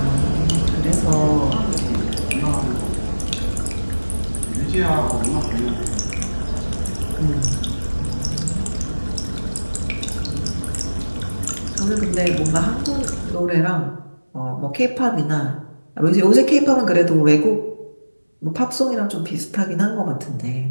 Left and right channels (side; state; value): both; inverted; correlation -1.00